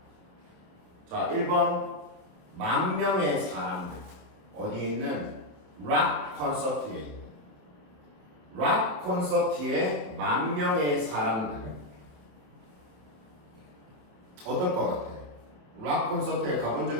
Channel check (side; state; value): left; late; 27 ms